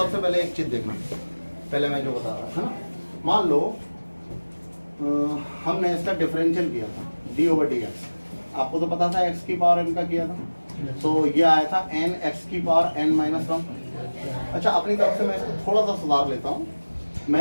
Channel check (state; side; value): inverted; both; correlation -1.00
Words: पहले एक चीज देखना, पहले मैं जो बता रहा था ना, मान लो हमने इसका डिफरेंशियल किया था d ओवर dx, आपको तो पता था x की पावर n का किया था, तो ये आया था n x की पावर n माइनस 1। अच्छा अपनी तरफ से मैं इसको थोड़ा सा सुधार लेता हूँ,